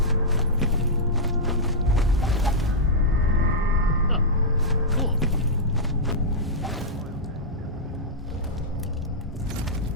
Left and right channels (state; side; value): normal; both; correlation -0.10